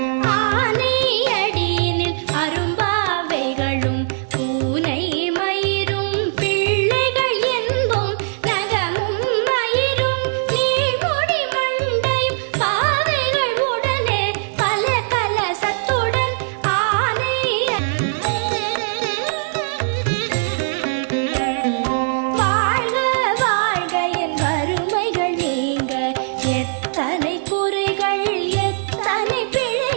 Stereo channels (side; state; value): left; silent; digital silence